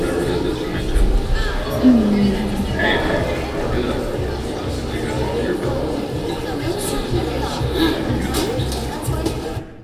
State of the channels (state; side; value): identical; both; correlation 1.00